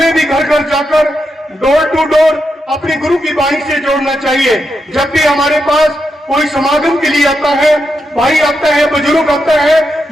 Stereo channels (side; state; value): both; normal; correlation 0.85